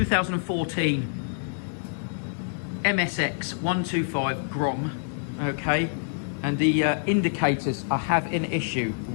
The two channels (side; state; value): right; silent; 60 dB below the other